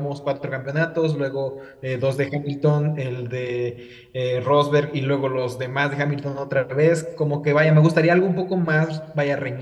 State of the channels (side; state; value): both; identical; correlation 1.00